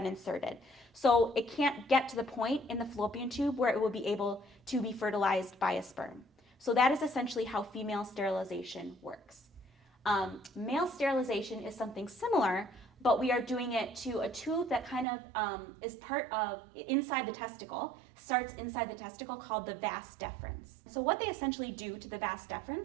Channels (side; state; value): left; drops out; at 15.1 s